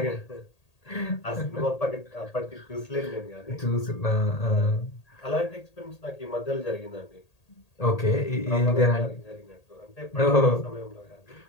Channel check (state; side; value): late; right; 1.8 ms